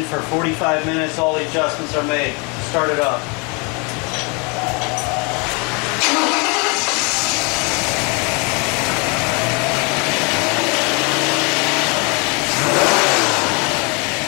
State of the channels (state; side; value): quieter; right; 31.6 dB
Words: for 45 minutes. All the adjustments are made. Start it up.